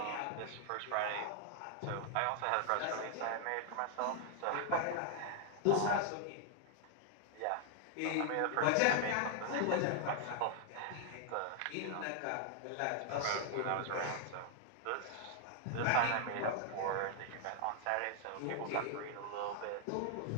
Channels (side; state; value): both; different; correlation 0.00